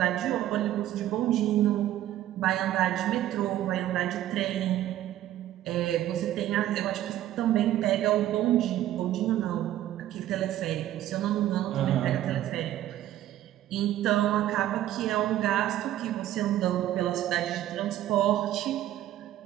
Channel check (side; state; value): left; quieter; 13.0 dB